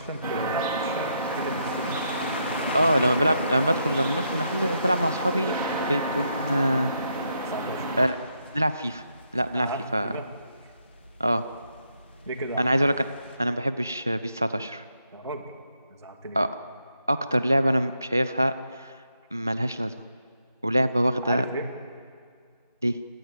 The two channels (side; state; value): both; inverted; correlation -0.79